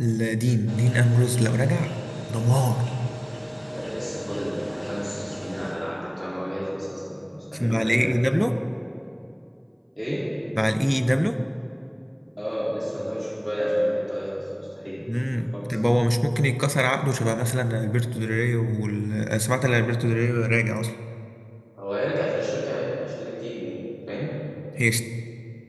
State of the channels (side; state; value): both; identical; correlation 1.00